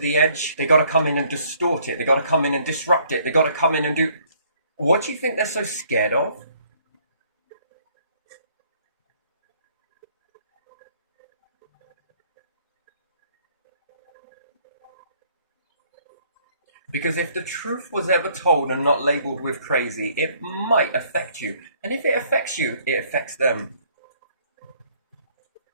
edge, they got to come in and distort it. They got to come in and disrupt it. They got to come in and do... What do you think they're so scared of? Because if the truth was ever told and not labelled with crazy, it might affect you. And if it affects you, it affects them.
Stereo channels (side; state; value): both; inverted; correlation -0.63